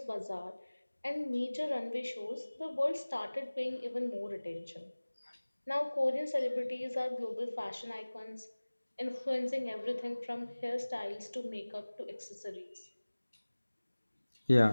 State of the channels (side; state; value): both; inverted; correlation -1.00